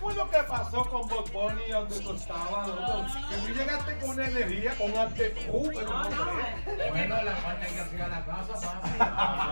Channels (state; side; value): inverted; both; correlation -1.00